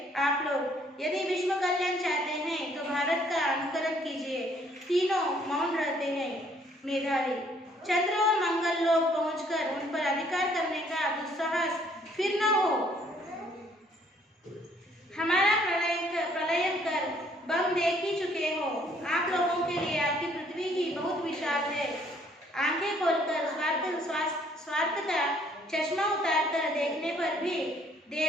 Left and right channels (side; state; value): both; normal; correlation 0.63